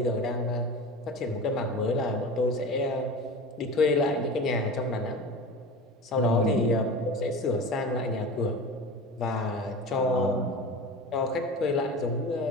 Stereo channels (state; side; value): normal; both; correlation 0.32